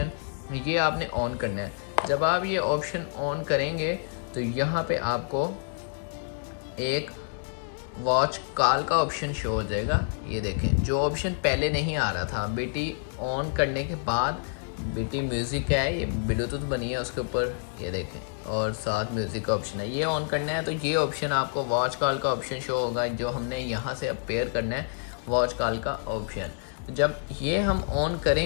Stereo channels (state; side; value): silent; right; digital silence